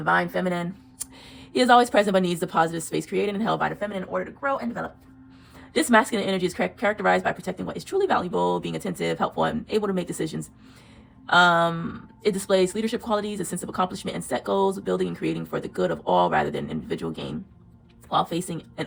feminine. He is always present but needs the positive space created and held by the feminine in order to grow and develop. This masculine energy is characterized by protecting what is truly valuable, being attentive, helpful, and able to make decisions. It displays leadership qualities, a sense of accomplishment, and set goals, building and creating for the good of all rather than individual gain, while facing and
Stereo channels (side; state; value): both; identical; correlation 1.00